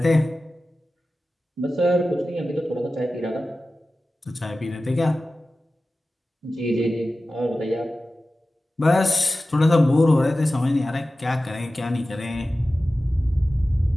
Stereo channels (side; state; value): both; normal; correlation 0.95